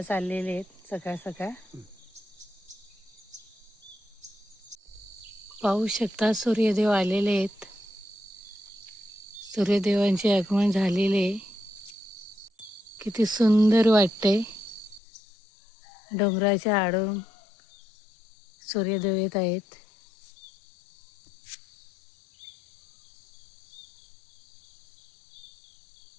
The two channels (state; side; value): drops out; right; at 15.0 s